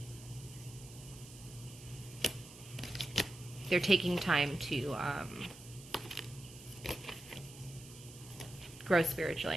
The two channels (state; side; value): noise; right; hiss, 17 dB below the sound